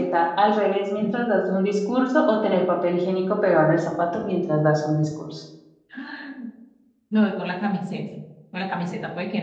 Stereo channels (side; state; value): both; identical; correlation 1.00